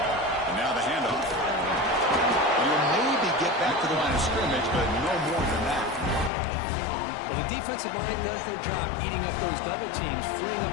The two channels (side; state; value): right; drops out; at 6.3 s